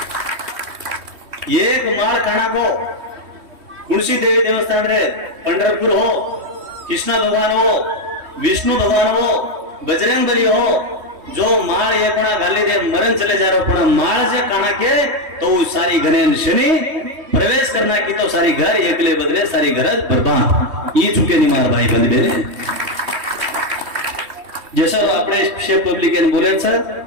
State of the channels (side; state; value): left; late; 3.1 ms